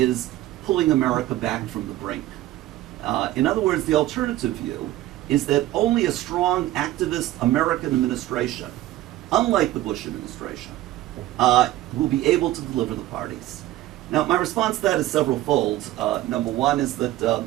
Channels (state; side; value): quieter; left; 15.4 dB